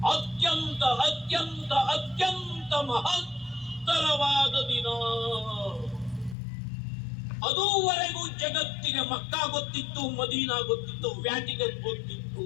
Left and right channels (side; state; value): right; drops out; at 6.4 s